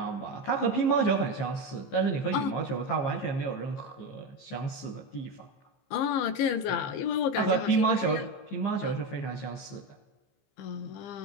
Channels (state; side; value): late; right; 15 ms